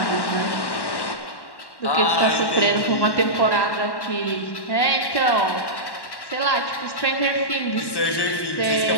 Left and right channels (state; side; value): late; right; 1.1 ms